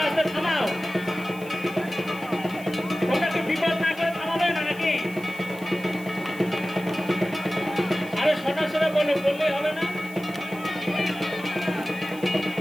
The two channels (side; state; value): right; noise; hiss, 20 dB below the sound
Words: আস্তে থামাও। তোমরা কি বিপদ না করে থামাবে না নাকি? আরে সরাসরি বললেই হবে না।